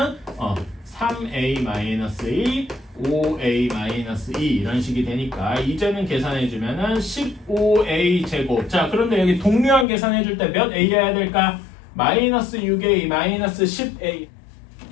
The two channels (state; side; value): drops out; right; at 9.9 s